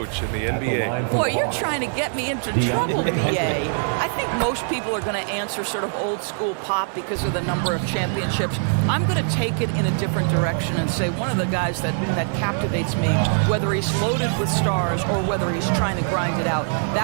in the NBA? Boy, you're trying to get me into trouble, B.A. I think most people are going to answer sort of old school Pop because of the number of championships. I'm going to take it in a different direction and say one of the guys that captivates me, whether he's loaded with stars or whether he's trying to grind it out,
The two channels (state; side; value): silent; left; 60 dB below the other